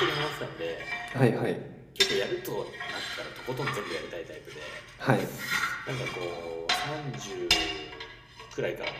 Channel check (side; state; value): both; identical; correlation 1.00